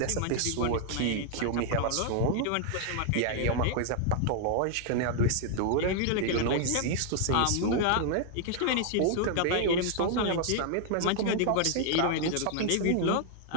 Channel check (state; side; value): different; both; correlation 0.00